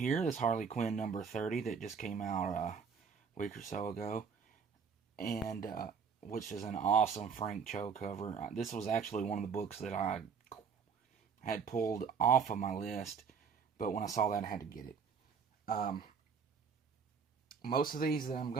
this Harley Quinn number 30 that just came out a week or so ago. And which is an awesome Frank Cho cover. This was actually one of the books that I had pulled off of my list, but when I saw that, I had to get it. Most of these that I'm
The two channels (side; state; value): left; quieter; 6.2 dB